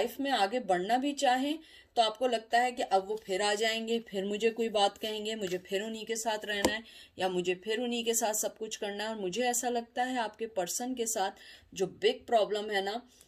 में आगे बढ़ना भी चाहें तो आपको लगता है कि अब वो फिर आ जाएंगे, फिर मुझे कोई बात कहेंगे, मुझे फिर उन्हीं के साथ रहना है, या मुझे फिर उन्हीं के साथ सब कुछ करना है। और मुझे ऐसा लगता है आपके पर्सन के साथ जो बिग प्रॉब्लम है ना,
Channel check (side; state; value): both; identical; correlation 1.00